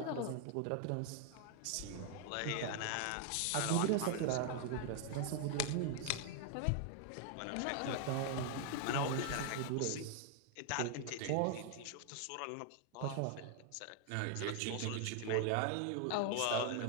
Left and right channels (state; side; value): different; both; correlation 0.00